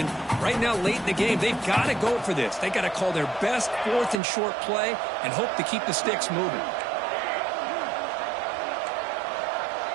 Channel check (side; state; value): left; drops out; at 4.2 s